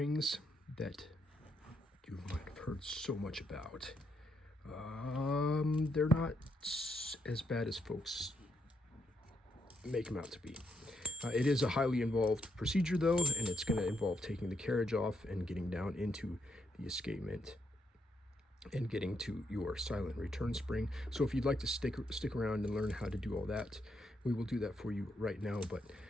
that you might have heard so much about. They're not as bad as folks make them out to be. It is a highly involved procedure, though, and it's going to involve taking the carriage off and getting down into the escapement and getting to your silent return spring. So if you'd like to stick around and learn how to do all that, we will do that for you right now. But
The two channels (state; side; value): normal; both; correlation 0.78